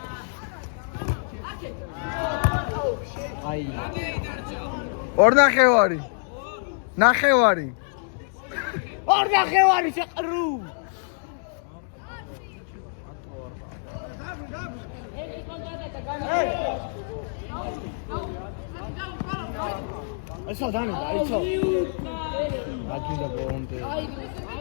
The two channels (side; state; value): right; silent; digital silence